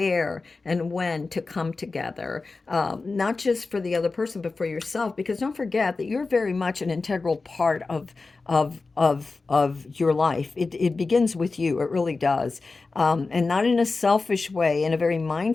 and when to come together, not just for the other person, but for yourself. Because don't forget that you're very much an integral part of your life. It begins with you. It really does, and not in a selfish way, in a very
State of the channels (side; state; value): right; quieter; 3.9 dB